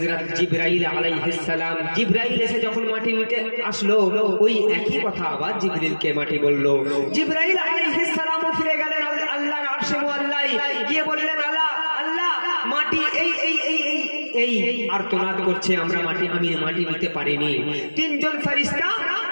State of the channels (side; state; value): both; inverted; correlation -1.00